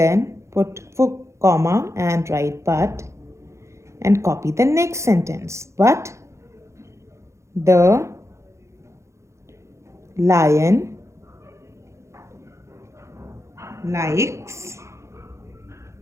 put comma and write but and copy the next sentence. But the lion likes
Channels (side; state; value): left; late; 0.14 ms